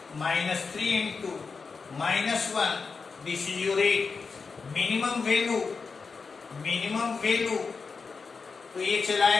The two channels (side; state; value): right; quieter; 4.9 dB